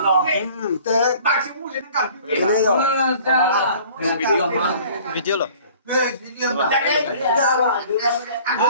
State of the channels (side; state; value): both; inverted; correlation -0.50